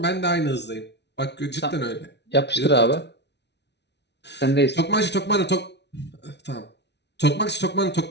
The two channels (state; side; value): late; right; 0.50 ms